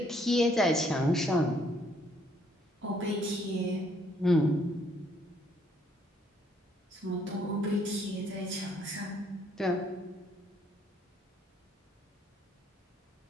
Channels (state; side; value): normal; both; correlation 0.67